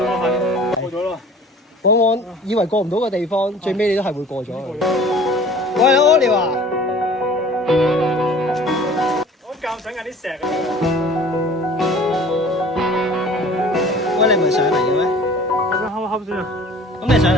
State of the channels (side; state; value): both; normal; correlation 0.47